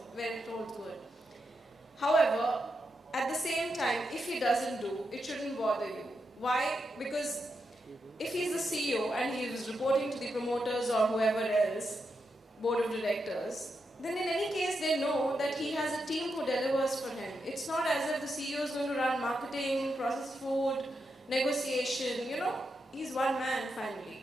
where it holds good. However, at the same time, if he doesn't do, it shouldn't bother you. Why? Because if he's the CEO and he is reporting to the promoters or whoever else, board of directors, then in any case they know that he has a team who delivers for him. It's not as if the CEO is going to run marketing, processed food, negotiation, you know, he's one man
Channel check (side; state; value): both; normal; correlation 0.85